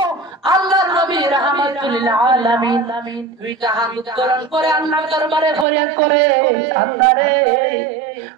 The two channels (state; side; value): drops out; left; at 5.7 s